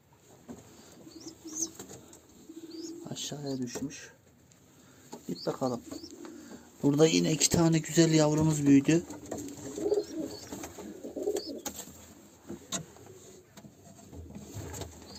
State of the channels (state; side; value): identical; both; correlation 1.00